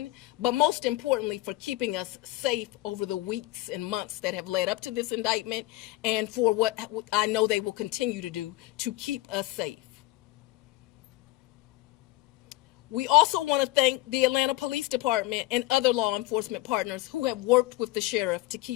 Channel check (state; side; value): quieter; right; 18.3 dB